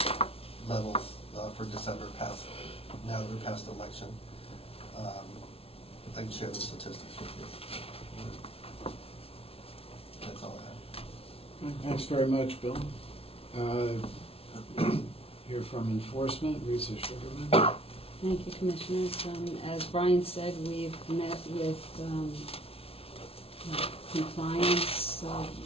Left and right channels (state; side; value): late; right; 0.28 ms